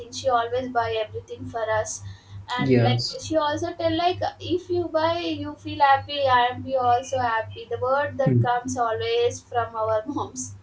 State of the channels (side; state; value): both; identical; correlation 1.00